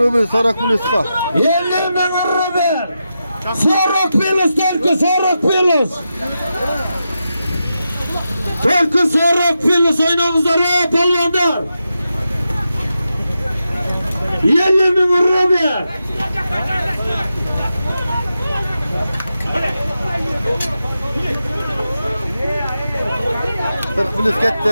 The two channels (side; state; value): both; inverted; correlation -0.89